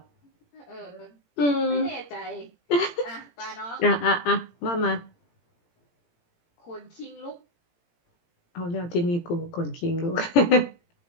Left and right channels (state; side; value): late; right; 17 ms